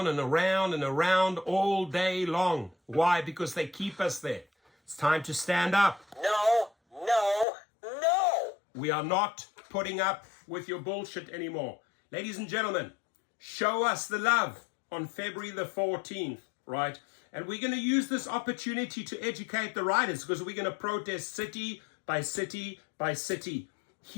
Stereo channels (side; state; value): right; drops out; at 7.5 s